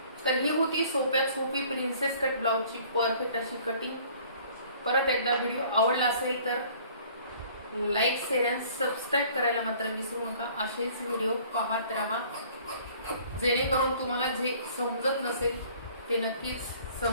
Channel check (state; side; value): inverted; both; correlation -0.54